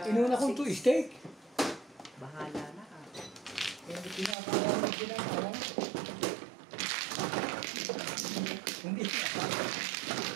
Inuna kong 2 steak. Bahala na ka. Hindi pinakakawa mo ginagawa. Hindi.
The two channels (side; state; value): left; drops out; at 4.4 s